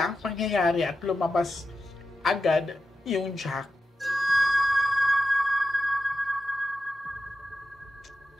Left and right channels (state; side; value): normal; both; correlation 0.90